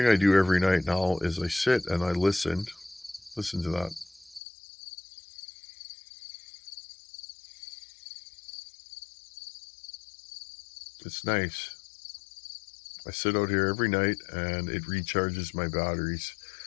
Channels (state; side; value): drops out; right; at 4.4 s